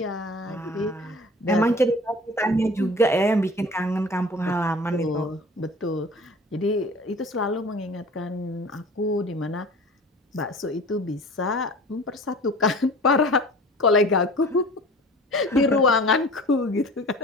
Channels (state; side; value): normal; both; correlation 0.43